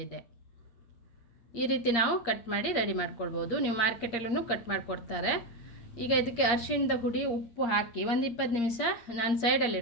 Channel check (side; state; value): right; late; 8.6 ms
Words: ಈ ರೀತಿ ನಾವು ಕಟ್ ಮಾಡಿ ರೆಡಿ ಮಾಡ್ಕೊಳ್ಬೋದು. ನೀವು ಮಾರ್ಕೆಟಲ್ಲೂ ಕಟ್ ಮಾಡಿಕೊಡ್ತಾರೆ. ಈಗ ಇದಕ್ಕೆ ಅರಿಶಿಣದ ಹುಡಿ, ಉಪ್ಪು ಹಾಕಿ ಒಂದು 20 ನಿಮಿಷ ನಾನು ಸೈಡಲ್ಲಿ